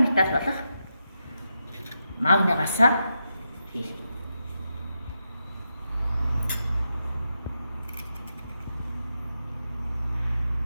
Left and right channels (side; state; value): both; inverted; correlation -0.87